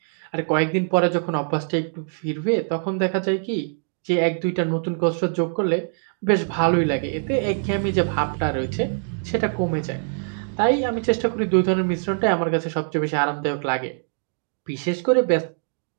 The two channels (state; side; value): silent; left; digital silence